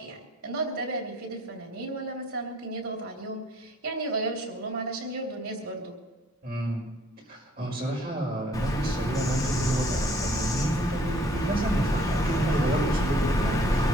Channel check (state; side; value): normal; both; correlation 0.60